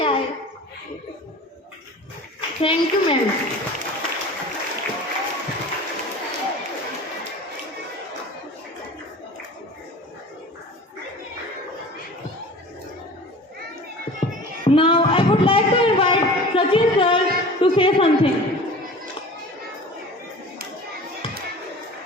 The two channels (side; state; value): both; normal; correlation 0.39